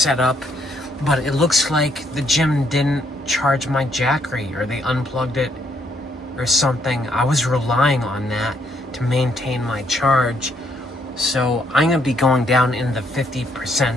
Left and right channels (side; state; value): both; normal; correlation 0.72